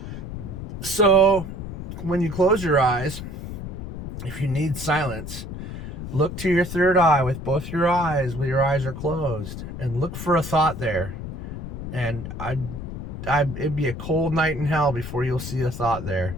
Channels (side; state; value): left; noise; rumble, 8 dB below the sound